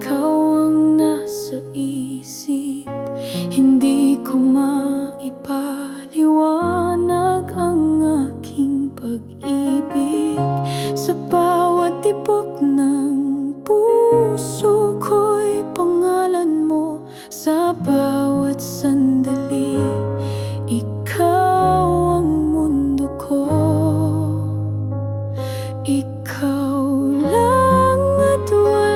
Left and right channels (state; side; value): identical; both; correlation 1.00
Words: ang nasa isip. Hindi ko maipaliwanag ang aking pag-ibig. Sa bawat tibok ng puso ko'y pangalan mo. Sa bawat sandali, ikaw ang mundo ko. Ikaw lang at